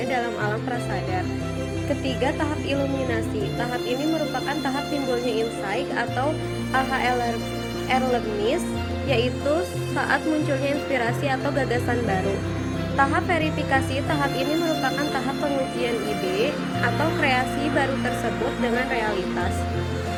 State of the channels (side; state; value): both; identical; correlation 1.00